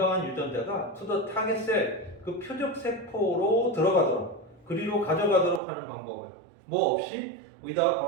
유전자가 to the target cell, 그 표적 세포로 들어가도록, 그리로 가져가도록 하는 방법을 뭐 없이 without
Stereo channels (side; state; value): left; drops out; at 5.6 s